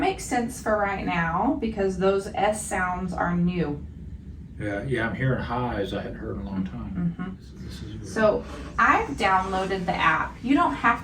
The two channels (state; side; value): identical; both; correlation 1.00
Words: sense for right now because those S sounds are new. Yeah, I'm hearing highs I hadn't heard in a long time. Mhm. This is weird. So I've downloaded the app. You don't have